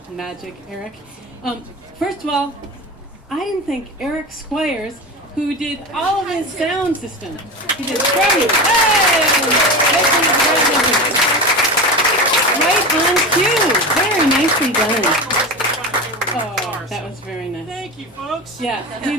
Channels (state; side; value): normal; both; correlation 0.25